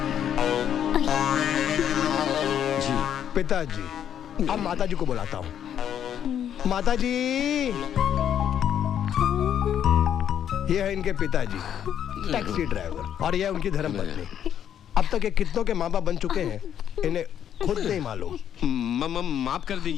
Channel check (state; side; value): quieter; right; 9.5 dB